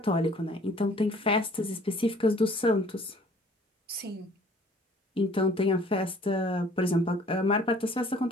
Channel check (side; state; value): both; normal; correlation 0.54